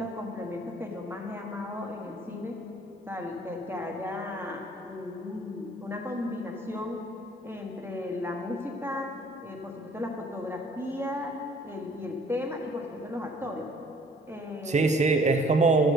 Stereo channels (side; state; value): both; normal; correlation 0.56